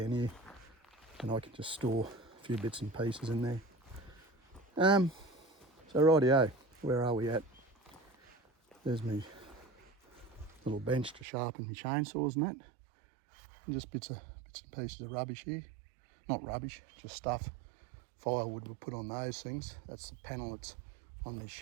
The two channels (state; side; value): drops out; left; at 11.2 s